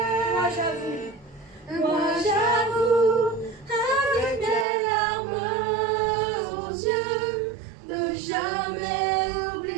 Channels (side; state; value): left; drops out; at 4.7 s